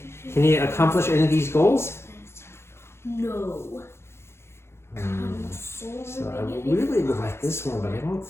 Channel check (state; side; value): late; right; 0.12 ms